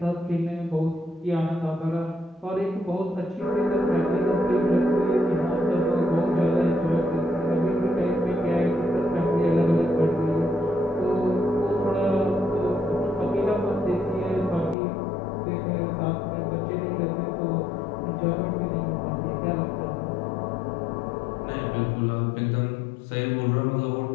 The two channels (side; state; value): right; drops out; at 14.8 s